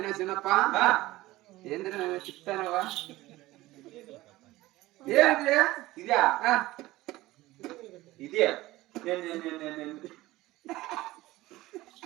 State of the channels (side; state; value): left; quieter; 18.0 dB